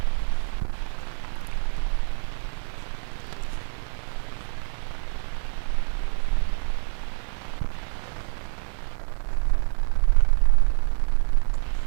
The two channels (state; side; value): silent; left; 61 dB below the other